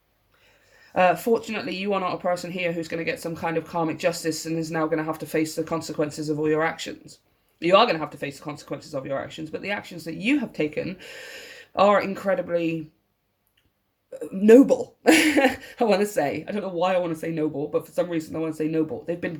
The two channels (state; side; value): identical; both; correlation 1.00